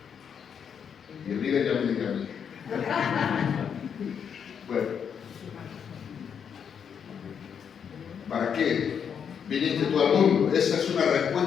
Y el líder ya me dice a mí. Bueno. ¿Para qué viniste tú al mundo? Esa es una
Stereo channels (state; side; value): quieter; right; 7.5 dB